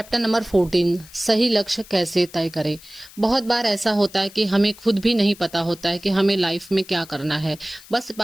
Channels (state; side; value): noise; left; hiss, 21 dB below the sound